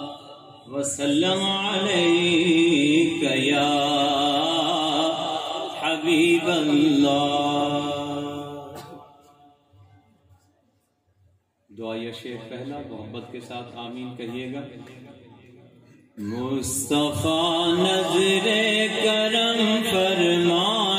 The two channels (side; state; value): both; identical; correlation 1.00